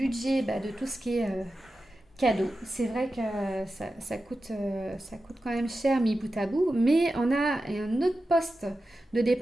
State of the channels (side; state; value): both; normal; correlation 0.92